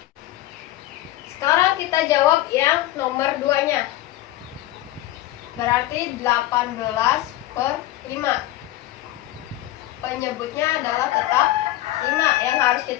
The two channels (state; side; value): quieter; right; 15.6 dB